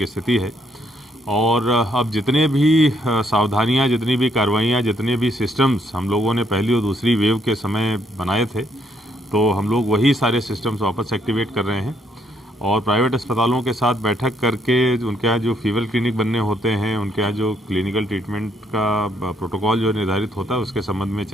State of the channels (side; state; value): both; normal; correlation 0.71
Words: स्थिति है। और अब जितने भी सावधानियाँ, जितनी भी कार्रवाइयाँ, जितने भी सिस्टम्स हम लोगों ने पहली और दूसरी वेव के समय बनाए थे, तो हम लोग वही सारे सिस्टम्स वापस एक्टिवेट कर रहे हैं। और प्राइवेट अस्पतालों के साथ बैठक करके उनके यहाँ जो फीवर क्लिनिक बनने होते हैं, उनके यहाँ जो क्लिनिकल ट्रीटमेंट का प्रोटोकॉल जो निर्धारित होता है, उसके संबंध में